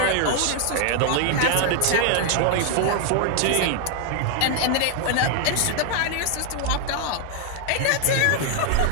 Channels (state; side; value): different; both; correlation 0.00